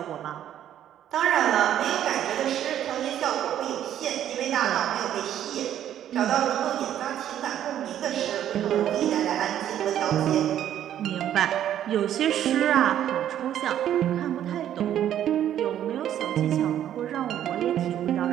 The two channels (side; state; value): left; quieter; 10.9 dB